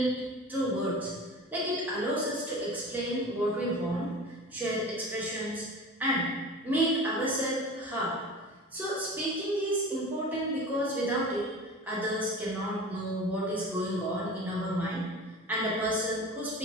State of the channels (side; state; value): both; normal; correlation 0.36